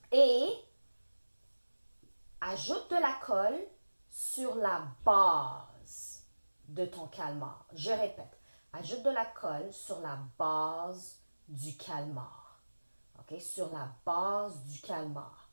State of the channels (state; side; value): inverted; both; correlation -1.00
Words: et ajoute de la colle sur la base de ton calmar. Je répète, ajoute de la colle sur la base du calmar. OK? Sur la base du calmar.